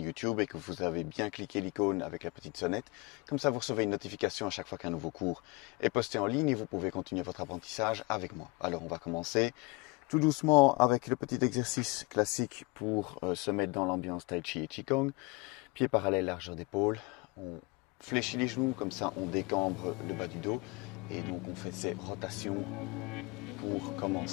et que vous avez bien cliqué l'icône avec la petite sonnette. Comme ça, vous recevez une notification à chaque fois qu'un nouveau cours est posté en ligne et vous pouvez continuer votre apprentissage avec moi. Alors on va commencer tout doucement avec le petit exercice classique pour se mettre dans l'ambiance Tai Chi et Qigong. Pieds parallèles, largeur d'épaule. On fléchit les genoux, comme ça on décambre le bas du dos. Et donc on fait ces rotations pour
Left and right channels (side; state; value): right; quieter; 25.7 dB